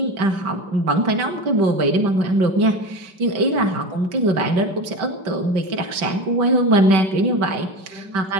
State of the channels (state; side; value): late; left; 5.2 ms